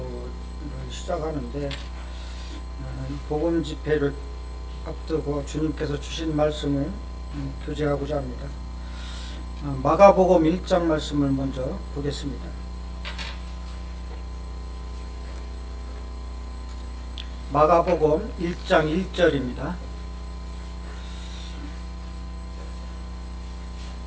시작하는데, 복음 집회를 앞두고 주님께서 주신 말씀을 교제하고자 합니다. 마가복음 1장 말씀을 먼저 보겠습니다. 마가복음 1장 1절입니다.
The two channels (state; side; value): identical; both; correlation 1.00